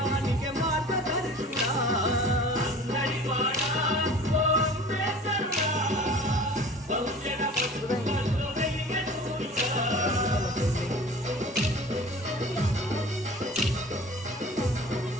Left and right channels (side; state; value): both; normal; correlation 0.43